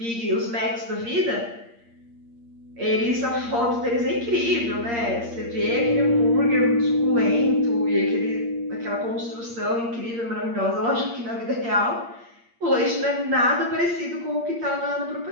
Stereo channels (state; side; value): late; left; 8.6 ms